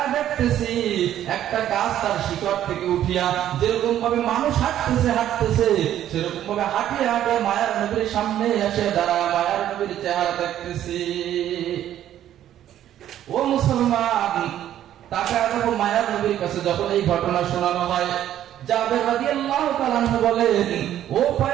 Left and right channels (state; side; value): quieter; left; 11.6 dB